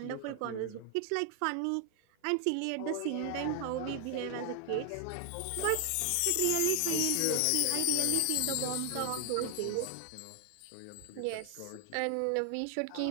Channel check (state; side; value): different; both; correlation 0.00